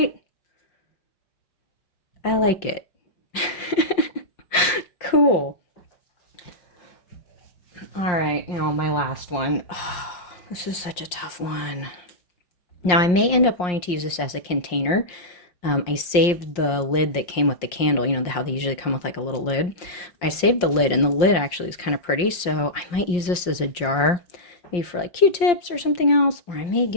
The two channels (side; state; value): right; late; 5.6 ms